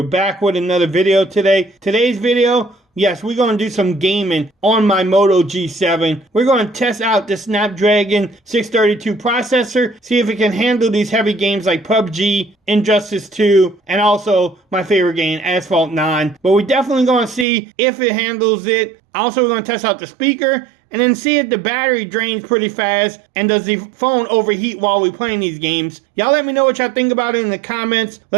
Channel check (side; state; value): left; drops out; at 17.4 s